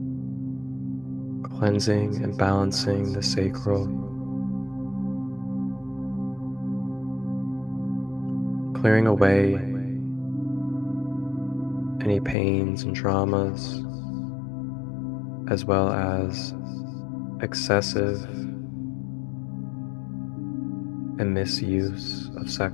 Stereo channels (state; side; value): drops out; right; at 12.4 s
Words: cleansing and balancing the sacral, clearing away any pains and traumas, as well as excessive and misuse of